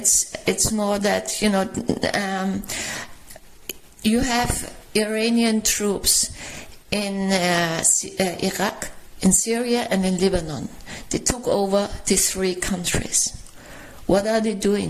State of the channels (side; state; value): both; identical; correlation 1.00